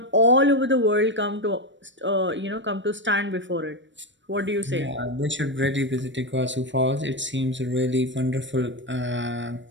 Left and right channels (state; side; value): late; left; 0.54 ms